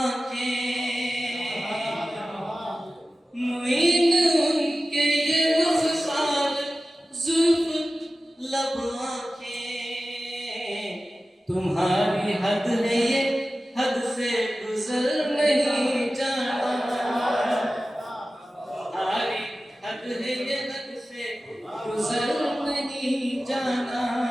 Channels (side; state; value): both; normal; correlation 0.95